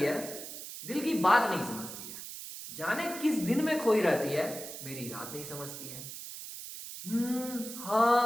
है, दिल की बात नहीं समझती है, जाने किस दिन में खोई रहती है, मेरी रात नहीं समझती है।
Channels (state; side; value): noise; right; hiss, 10 dB below the sound